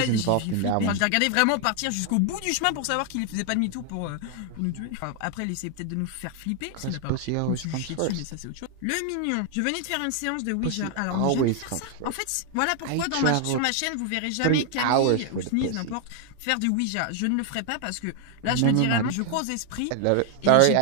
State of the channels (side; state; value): both; different; correlation 0.00